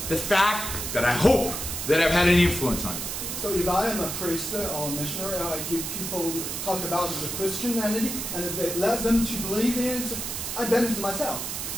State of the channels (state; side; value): noise; right; hiss, 4 dB below the sound